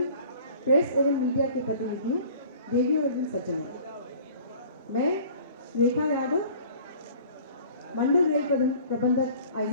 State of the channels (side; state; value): both; inverted; correlation -0.48